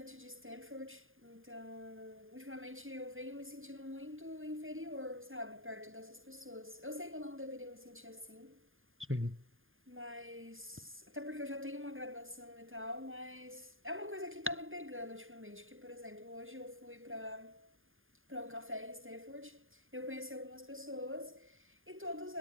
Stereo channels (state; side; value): late; left; 0.59 ms